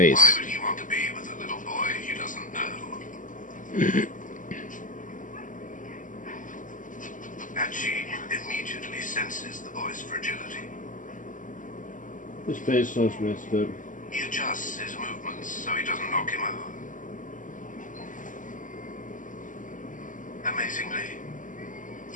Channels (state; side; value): late; right; 0.38 ms